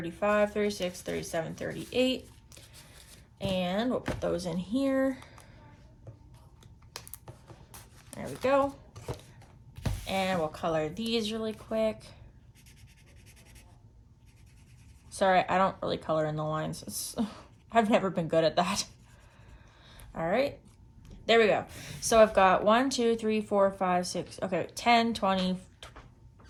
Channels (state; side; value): identical; both; correlation 1.00